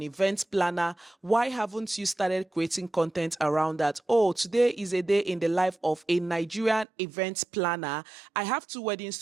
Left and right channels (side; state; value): left; drops out; at 6.9 s